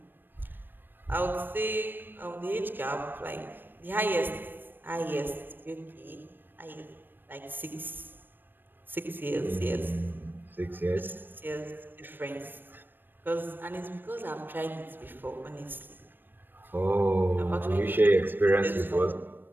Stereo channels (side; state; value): left; late; 0.094 ms